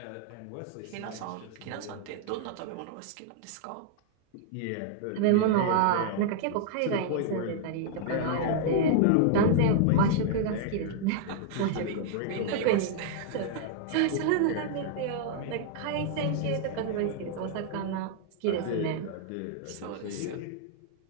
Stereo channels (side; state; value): both; different; correlation 0.00